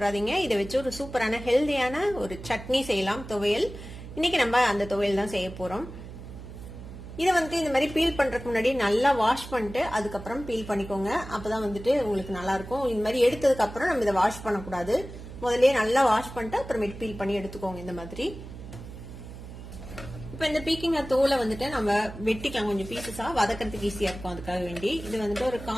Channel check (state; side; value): noise; right; hum, 13 dB below the sound